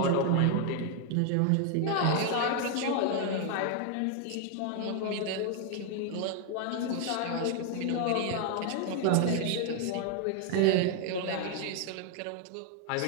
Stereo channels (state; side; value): different; both; correlation 0.00